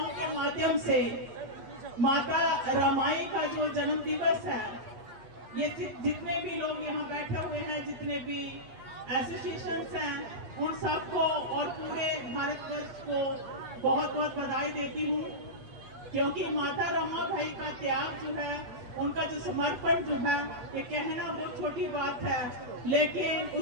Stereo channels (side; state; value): left; late; 8.2 ms